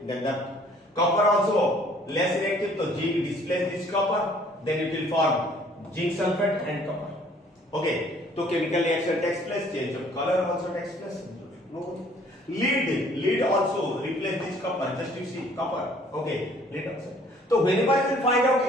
than the copper, also less reactive. So zinc displace this copper, then it will form zinc sulfate and copper. Okay. So chemical reaction takes place, change of color also takes place. No. Lead also replace this copper. Just you see copper. Okay. Lead also. So whenever you will find out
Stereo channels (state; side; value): normal; both; correlation 0.58